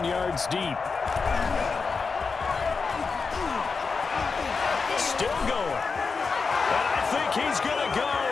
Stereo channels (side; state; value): right; quieter; 4.8 dB